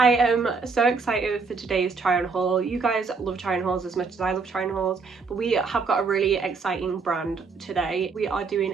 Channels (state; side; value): quieter; left; 4.7 dB